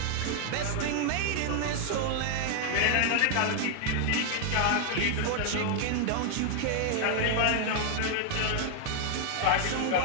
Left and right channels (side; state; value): both; different; correlation 0.00